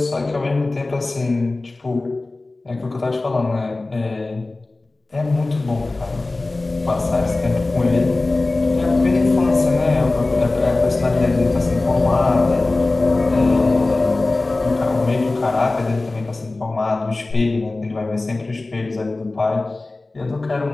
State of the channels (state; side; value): quieter; right; 3.2 dB